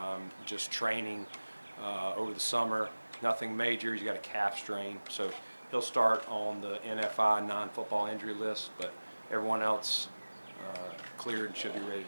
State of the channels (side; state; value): both; inverted; correlation -1.00